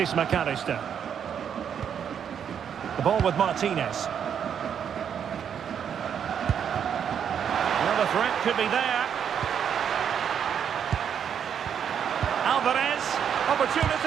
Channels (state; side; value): quieter; left; 8.2 dB